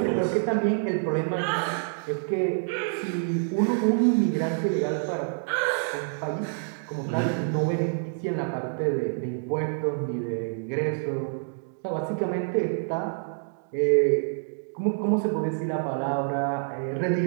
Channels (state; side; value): silent; left; digital silence